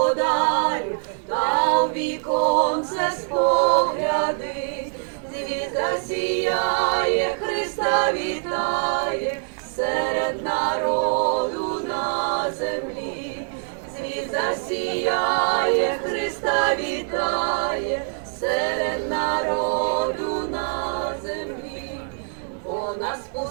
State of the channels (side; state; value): left; silent; 63 dB below the other